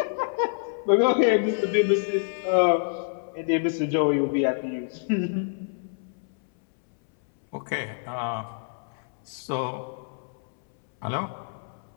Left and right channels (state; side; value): silent; right; 60 dB below the other